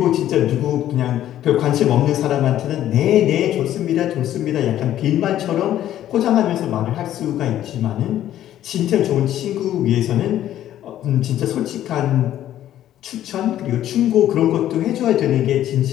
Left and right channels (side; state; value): right; quieter; 12.2 dB